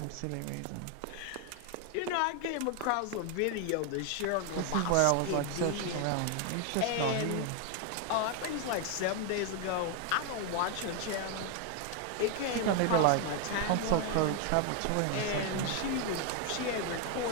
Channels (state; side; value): different; both; correlation 0.01